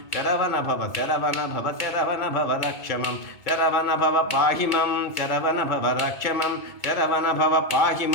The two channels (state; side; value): late; right; 2.3 ms